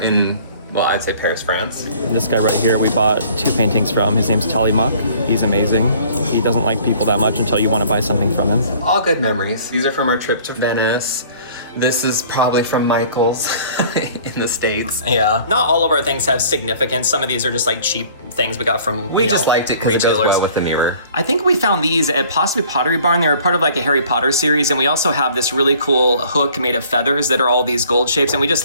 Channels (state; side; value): inverted; both; correlation -0.53